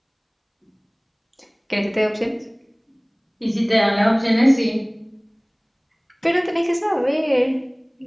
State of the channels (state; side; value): identical; both; correlation 1.00